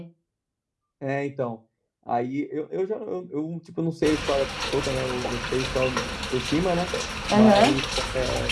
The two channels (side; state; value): both; identical; correlation 1.00